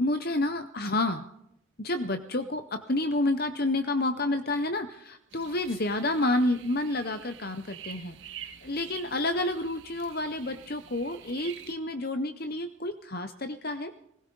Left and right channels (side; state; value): both; normal; correlation 0.33